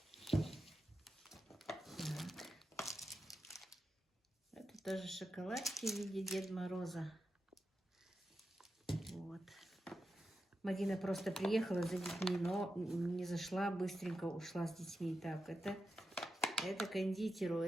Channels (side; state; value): both; normal; correlation 0.89